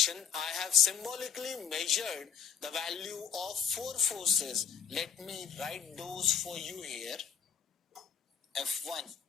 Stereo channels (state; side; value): quieter; right; 7.1 dB